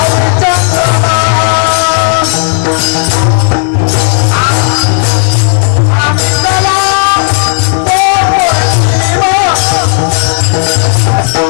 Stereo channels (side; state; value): right; silent; digital silence